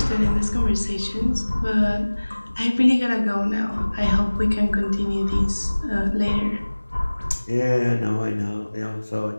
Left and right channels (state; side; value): inverted; both; correlation -1.00